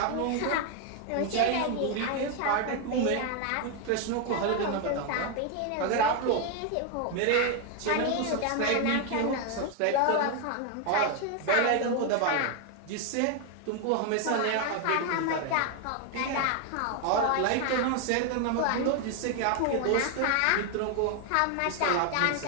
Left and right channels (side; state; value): both; different; correlation 0.01